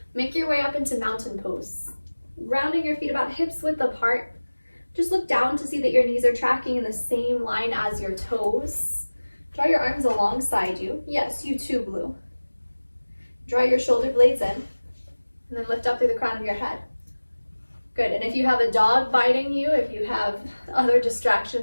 make your way up into mountain pose. Grounding your feet about hips width apart. Just look down to see that your knees are tracking in the same line as your toes. Draw your arms alongside you. Yes, you too, Blue. Draw your shoulder blades in, and then lift up through the crown of your head. Good, and if you have a dog biting you, if you have other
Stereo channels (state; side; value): inverted; both; correlation -1.00